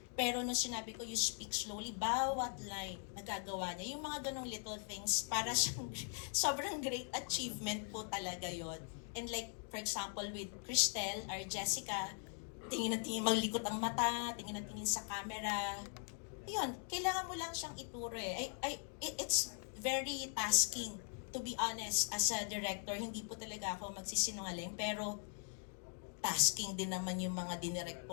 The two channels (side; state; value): right; silent; 50 dB below the other